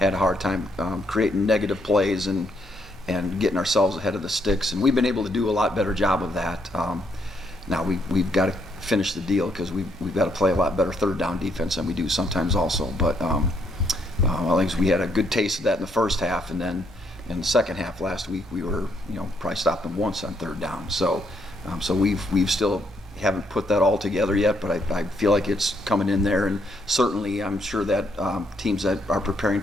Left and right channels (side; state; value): both; normal; correlation 0.73